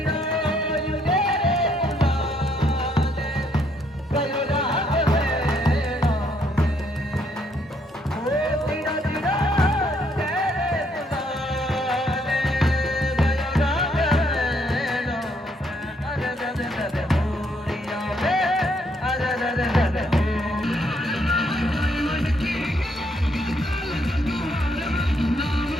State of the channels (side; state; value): both; normal; correlation 0.71